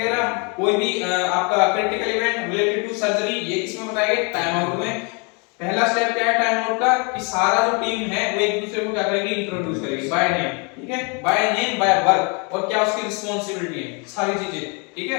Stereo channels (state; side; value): quieter; right; 33.5 dB